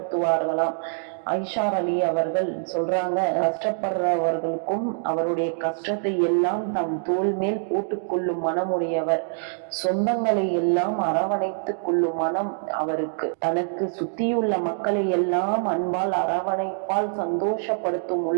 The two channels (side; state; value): left; silent; digital silence